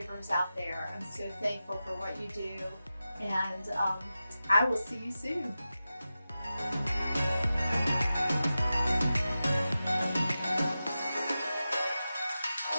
out there, I'm so thankful for what you do, and I will see you soon.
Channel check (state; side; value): inverted; both; correlation -0.93